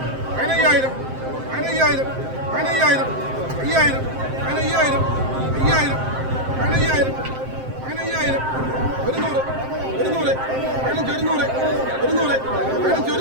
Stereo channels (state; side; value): late; left; 7.6 ms